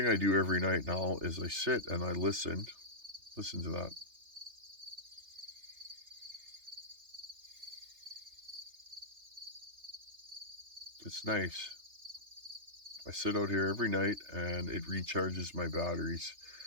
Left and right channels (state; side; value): late; left; 3.3 ms